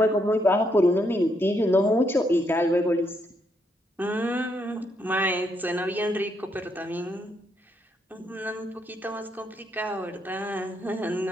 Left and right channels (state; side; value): normal; both; correlation 0.76